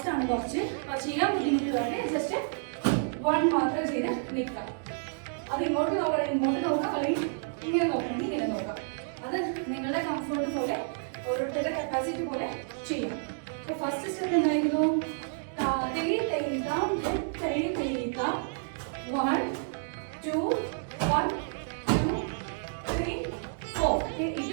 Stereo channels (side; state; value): left; silent; digital silence